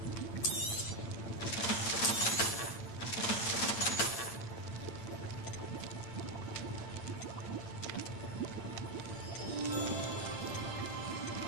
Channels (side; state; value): right; late; 8.8 ms